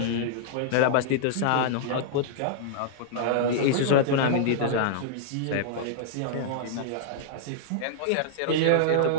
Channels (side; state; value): both; different; correlation -0.02